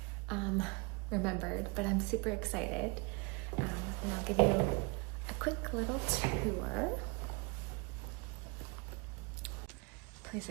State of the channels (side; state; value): left; quieter; 29.5 dB